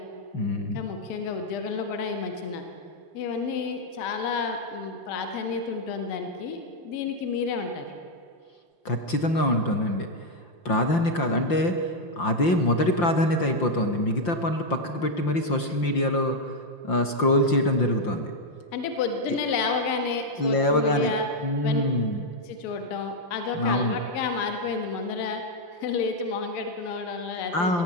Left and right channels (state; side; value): late; right; 5.8 ms